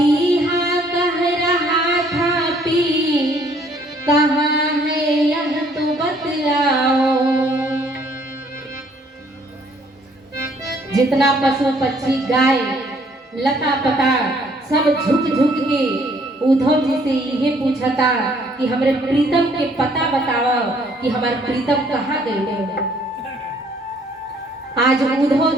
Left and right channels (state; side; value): normal; both; correlation 0.63